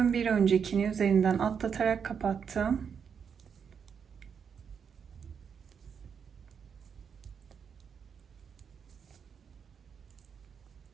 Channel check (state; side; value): quieter; left; 6.9 dB